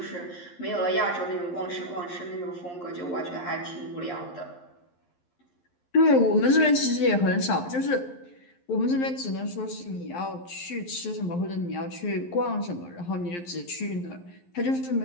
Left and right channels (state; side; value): late; right; 11 ms